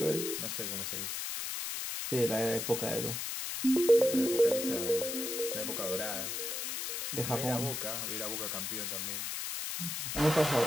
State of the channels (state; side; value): noise; left; hiss, 3 dB below the sound